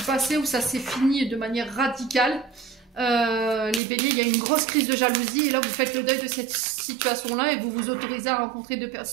passé où ça s'est fini de manière radicale. Les béliers, il y a une grosse crise de jalousie. Et là, vous faites le deuil de cette situation-là et vous vous autorisez à rencontrer des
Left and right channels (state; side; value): drops out; left; at 3.8 s